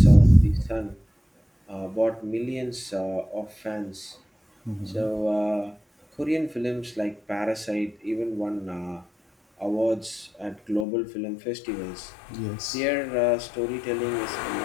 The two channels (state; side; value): drops out; right; at 10.9 s